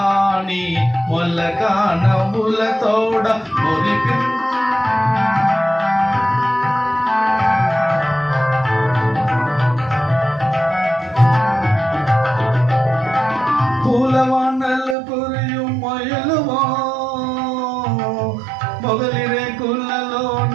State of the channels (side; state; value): left; drops out; at 15.0 s